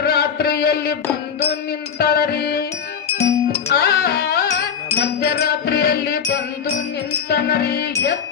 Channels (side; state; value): right; quieter; 7.2 dB